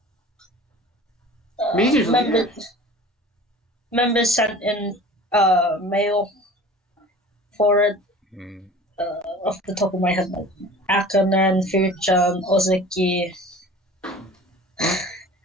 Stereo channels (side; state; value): both; normal; correlation 0.42